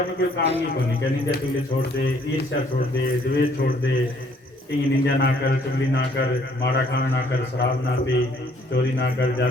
कोई काम नहीं करनी क्या, निंदिया चुगली छोड़ दे, ईर्ष्या छोड़ दे, द्वेष छोड़ दे, कहीं निंदा ना कर, चुगली ना कर, माड़ा काम ना कर, शराब ना पी, चोरी ना कर,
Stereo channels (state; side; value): normal; both; correlation 0.63